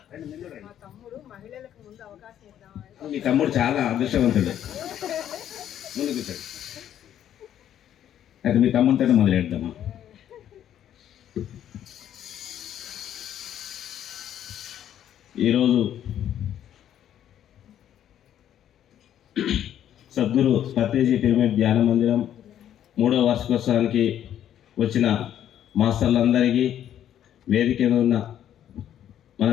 మీ తమ్ముడు చాలా అదృష్టవంతుడు. ముందు కూర్చోండి. అయితే మీ తమ్ముడితో మొదలెడదామా? ఈరోజు సద్గురు పత్రిజీ పిరమిడ్ ధ్యాన మందిరం 3వ వార్షికోత్సవానికి వచ్చిన మాస్టర్లందరికీ, వేదిక మీద ఉన్న మన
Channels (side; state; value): right; quieter; 10.7 dB